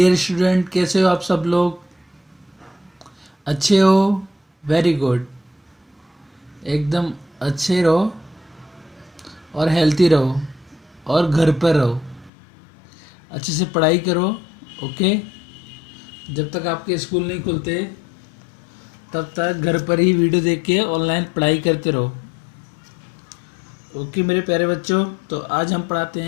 student, कैसे हो आप सब लोग? अच्छे हो? Very good. एकदम अच्छे रहो और हेल्थी रहो और घर पर रहो। अच्छे से पढ़ाई करो। ओके। जब तक आपके स्कूल नहीं खुलते तब तक घर पर ही वीडियो देख के ऑनलाइन पढ़ाई करते रहो। ओके मेरे प्यारे बच्चों, तो आज हम पढ़ाते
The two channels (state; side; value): drops out; right; at 12.3 s